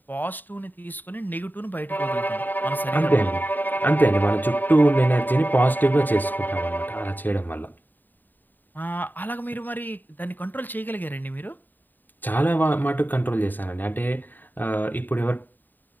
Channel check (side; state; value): right; late; 0.089 ms